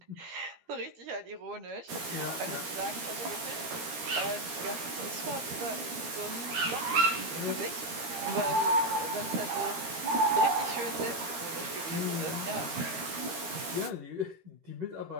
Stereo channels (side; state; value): left; late; 13 ms